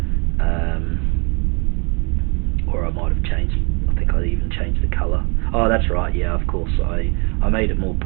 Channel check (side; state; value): left; quieter; 33.4 dB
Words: Or I might have changed, I think I even changed the colour. Oh, that's right, yeah, of course, I made it more